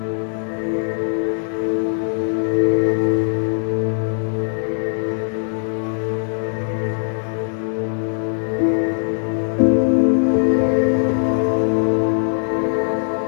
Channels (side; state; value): right; silent; digital silence